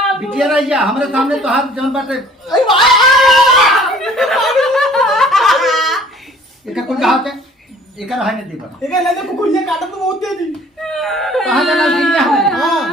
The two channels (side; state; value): both; normal; correlation 0.53